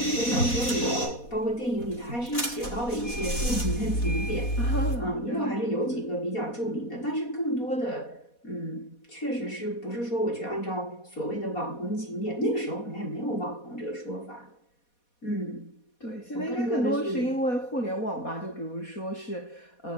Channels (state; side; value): late; right; 4.2 ms